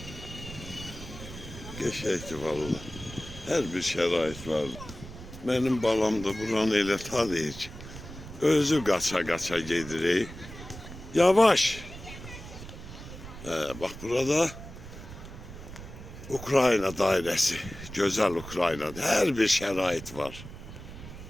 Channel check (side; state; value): right; noise; rumble, 13 dB below the sound